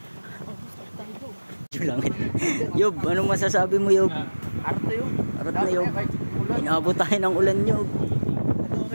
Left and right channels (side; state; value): both; inverted; correlation -1.00